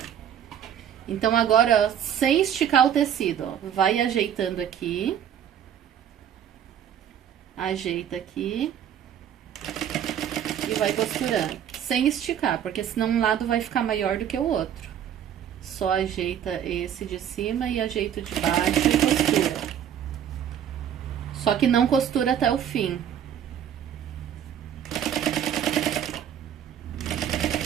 Então, agora, ó, sem esticar o tecido, ó, vai ajeitando aqui. Ajeita aqui. E vai costurando. Sem esticar, porque senão um lado vai ficar maior do que o outro. Só ajeita esse de cima e ajeita o de baixo e costura. Só que não costura até o fim.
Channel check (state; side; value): quieter; left; 9.5 dB